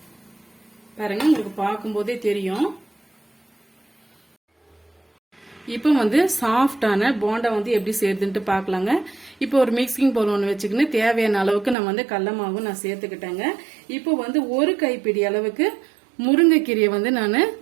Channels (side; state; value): left; drops out; at 11.8 s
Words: பாருங்க உங்களுக்கு பார்க்கும் போதே தெரியும். இப்போ வந்து சாஃப்டான போண்டா வந்து எப்படி செய்யறதுன்ட்டு பார்க்கலாங்க. இப்போ ஒரு மிக்சிங் பவுல் ஒன்று வச்சுக்கின்னு தேவையான அளவுக்கு நான் வந்து கடல மாவு நான் சேர்த்துக்கிட்டேங்க. இப்போ வந்து ஒரு கைப்பிடி அளவுக்கு முருங்கைக்கீரையை வந்து நான்